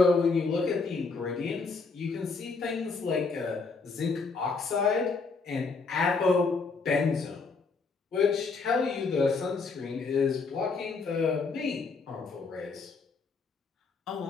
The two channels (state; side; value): quieter; right; 4.4 dB